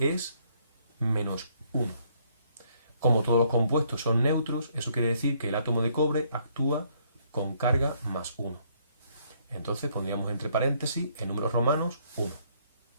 -1. Como todos los compuestos son neutros, eso quiere decir que el átomo de cobre actúa con carga +1. Entonces pondríamos entre paréntesis, en números romanos, 1.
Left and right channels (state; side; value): inverted; both; correlation -0.68